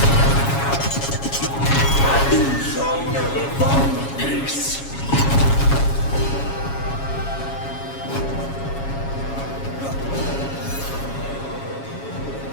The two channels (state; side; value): late; right; 7.2 ms